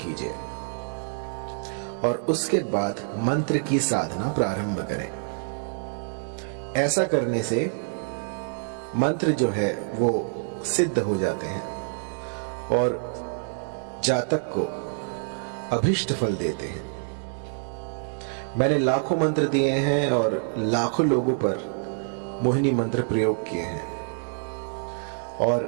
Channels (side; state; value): left; silent; 60 dB below the other